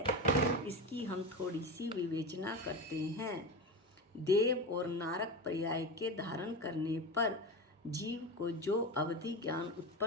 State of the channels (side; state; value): both; normal; correlation 0.22